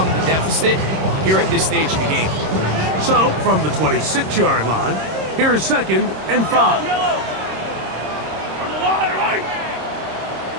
the deficit here at this stage of the game. So, from the 26-yard line, here's 2nd and 5.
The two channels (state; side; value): late; left; 26 ms